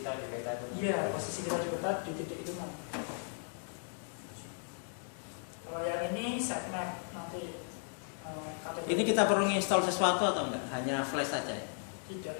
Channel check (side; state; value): right; silent; 54 dB below the other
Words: di peta itu. Iya, posisi kita di peta di titik itu kan. Kalau yang ini sitemap nanti Ini kita perlu install sesuatu atau enggak? Hanya flash saja ya? tidak,